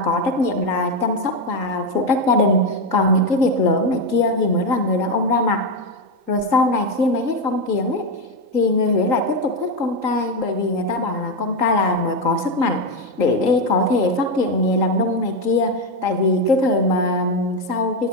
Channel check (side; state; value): left; late; 3.8 ms